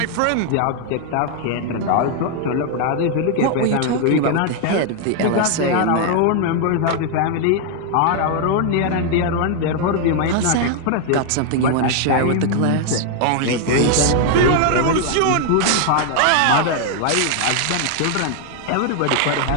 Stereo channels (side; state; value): both; different; correlation 0.00